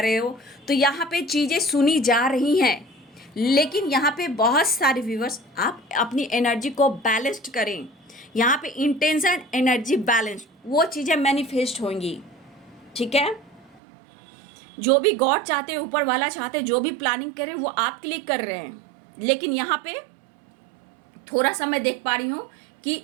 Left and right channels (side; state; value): left; drops out; at 13.8 s